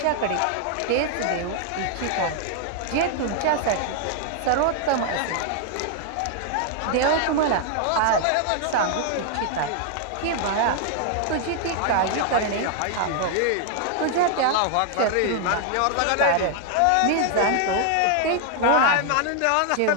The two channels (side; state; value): both; different; correlation 0.00